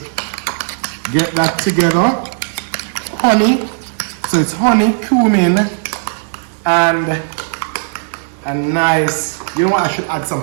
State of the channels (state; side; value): silent; left; 69 dB below the other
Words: get that together. Honey. So it's honey, cumin, and a nice, you know what, I should add